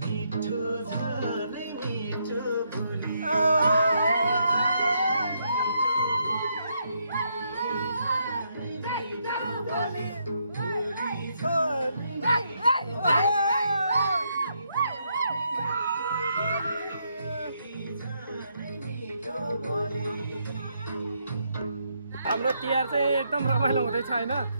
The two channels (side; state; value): both; inverted; correlation -0.76